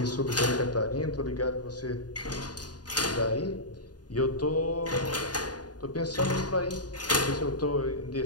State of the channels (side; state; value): right; late; 0.69 ms